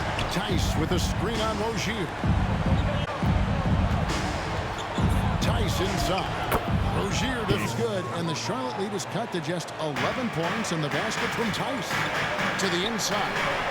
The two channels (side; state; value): both; identical; correlation 1.00